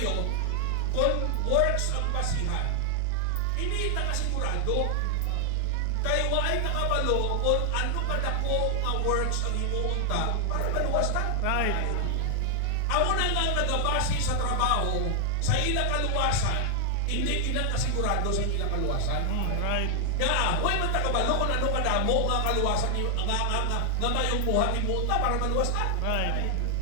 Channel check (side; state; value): both; different; correlation 0.00